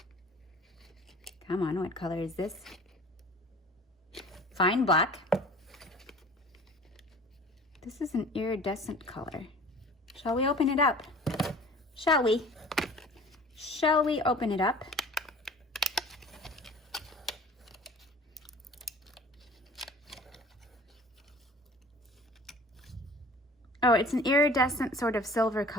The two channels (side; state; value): both; normal; correlation 0.45